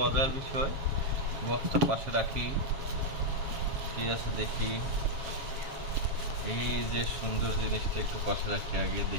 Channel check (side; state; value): left; late; 7.4 ms